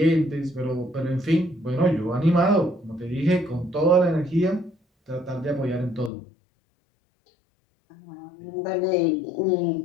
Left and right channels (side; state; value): right; drops out; at 6.1 s